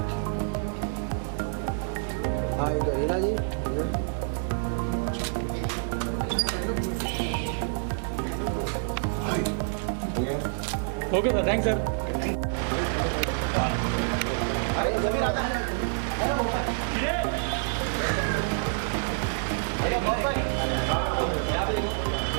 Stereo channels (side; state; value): left; silent; digital silence